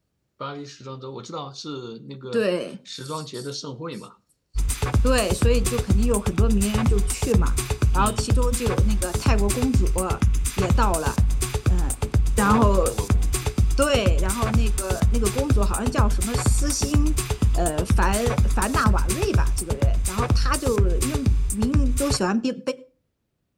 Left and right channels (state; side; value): identical; both; correlation 1.00